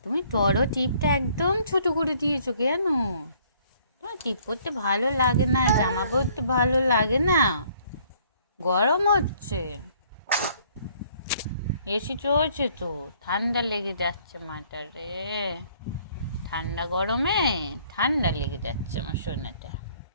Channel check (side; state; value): both; inverted; correlation -0.61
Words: তুমি বড় টিপটা একদম ছোট করে দিয়েছো কেন? তোমার টিপ পরতে ভালো লাগে না, জামা পরতে ভালো লাগে না? গরম হচ্ছে, এসি চলছে তো, ঠান্ডা লেগে যাচ্ছে মাটা রে। ঠান্ডা গরমে ঠান্ডা লেগে যাচ্ছে আমার সোনাটা।